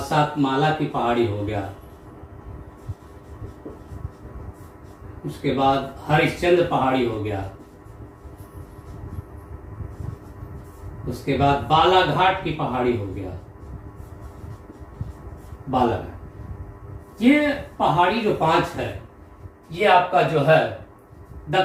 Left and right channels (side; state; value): both; identical; correlation 1.00